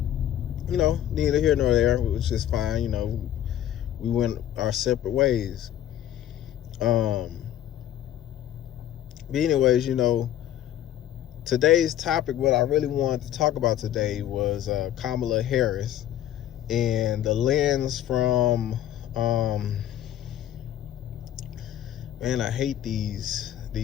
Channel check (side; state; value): right; quieter; 11.5 dB